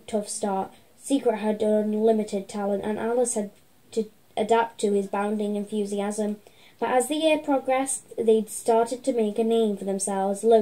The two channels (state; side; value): identical; both; correlation 1.00